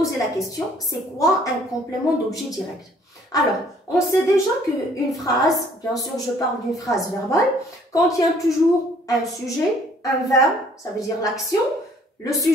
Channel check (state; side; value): normal; both; correlation 0.59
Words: la question, c'est quoi un complément d'objet direct? Alors, on sait déjà qu'une phrase, bien sûr je parle d'une phrase verbale, contient toujours un sujet, un verbe, ça veut dire l'action. Le